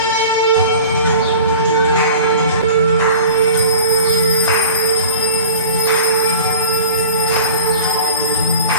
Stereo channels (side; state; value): both; inverted; correlation -0.41